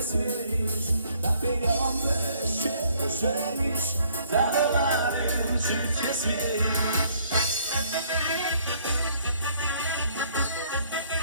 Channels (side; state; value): both; inverted; correlation -0.64